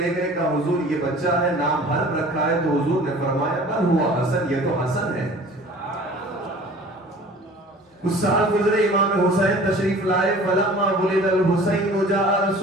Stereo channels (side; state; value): both; normal; correlation 0.46